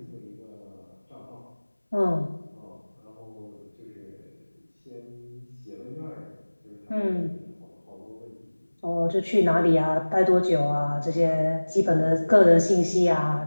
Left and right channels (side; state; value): both; inverted; correlation -1.00